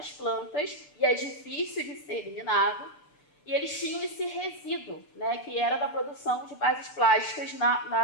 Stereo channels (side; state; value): right; late; 6.7 ms